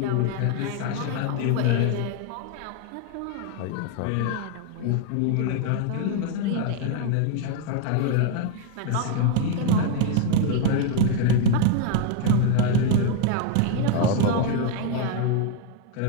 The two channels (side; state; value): both; different; correlation 0.01